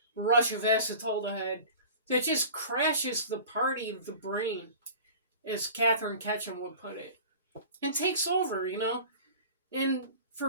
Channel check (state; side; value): inverted; both; correlation -0.40